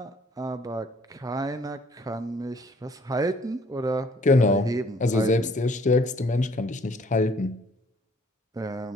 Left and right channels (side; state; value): both; normal; correlation 0.59